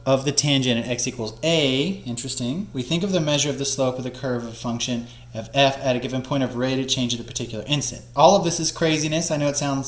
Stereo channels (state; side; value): identical; both; correlation 1.00